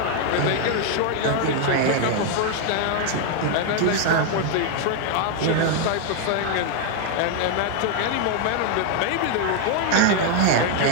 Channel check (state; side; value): different; both; correlation 0.01